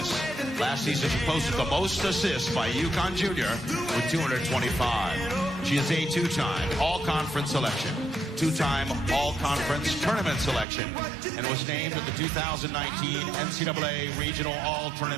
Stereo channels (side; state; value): left; drops out; at 10.7 s